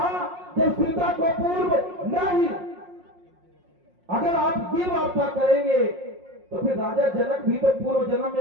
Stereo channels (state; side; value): late; left; 5.6 ms